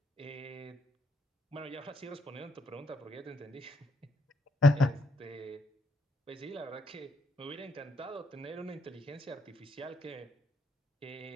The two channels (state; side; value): normal; both; correlation 0.73